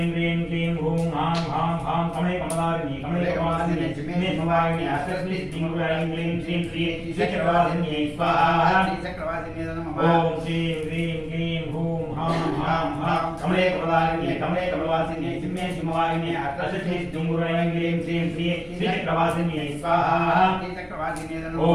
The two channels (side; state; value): both; identical; correlation 1.00